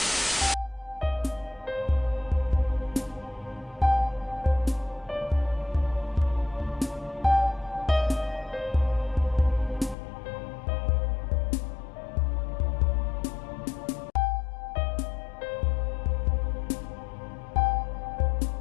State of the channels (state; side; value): drops out; right; at 10.0 s